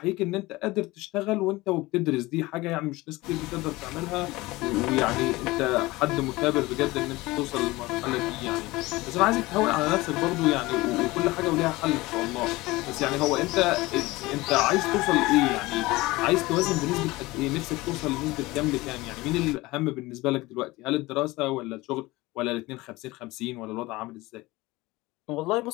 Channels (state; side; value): quieter; right; 20.5 dB